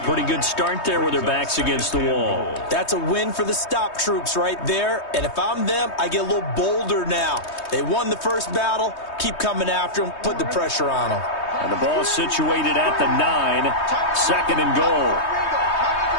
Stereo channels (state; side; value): late; right; 3.2 ms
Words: good start there with their backs against the wall. That's a win for the stop troops right there. And if I'm them, I get a little bolder now. They won the first battle. Keep coming after them. Put the pressure on them. And the ball situated at the 9. 2nd and goal.